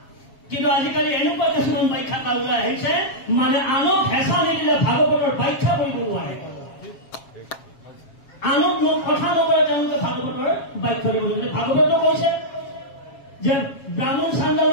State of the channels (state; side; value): late; right; 7.3 ms